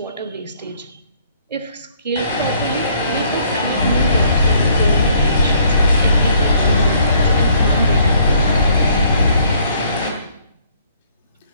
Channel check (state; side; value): inverted; both; correlation -0.63